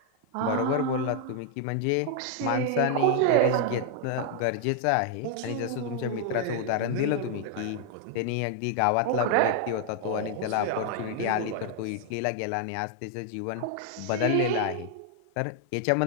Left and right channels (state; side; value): different; both; correlation 0.00